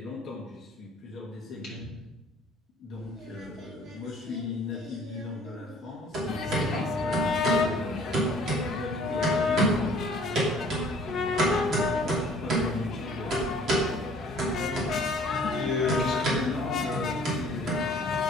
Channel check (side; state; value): both; normal; correlation 0.53